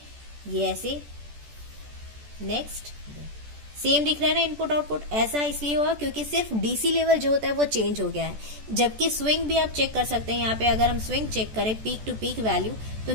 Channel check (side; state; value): left; late; 14 ms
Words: ऐसे, नेक्स्ट सेम दिख रहा है ना इनपुट आउटपुट। ऐसा इसलिए हुआ क्योंकि सिर्फ डीसी लेवल जो होता है वो चेंज हो गया है, जबकि स्विंग भी आप चेक कर सकते हैं। यहाँ पे अगर हम स्विंग चेक करें पीक टू पीक वैल्यू, तो